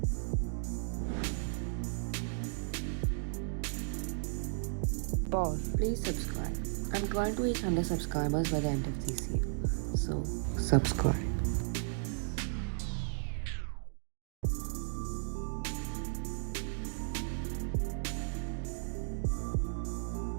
Pause. Please subscribe. I'm trying to reach 100 subscribers by the end of this year. So, subscribe.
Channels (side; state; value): left; silent; digital silence